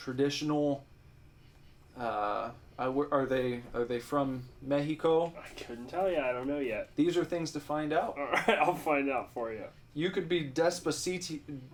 Are they from Mexico? I couldn't tell you. I don't know yet. These are things to find out. All right, I'll find out for you. You could be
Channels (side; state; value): both; identical; correlation 1.00